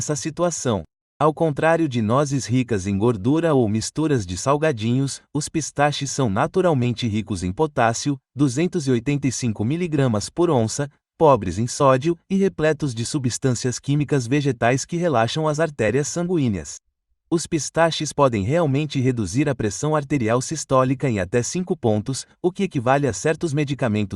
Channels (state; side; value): identical; both; correlation 1.00